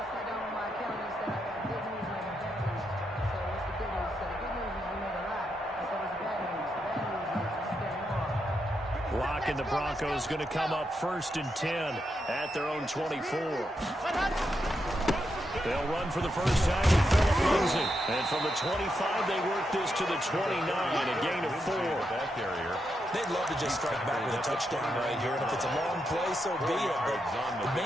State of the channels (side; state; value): both; normal; correlation 0.83